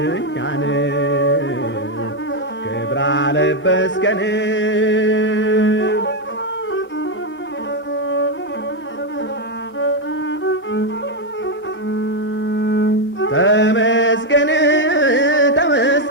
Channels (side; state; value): both; normal; correlation 0.04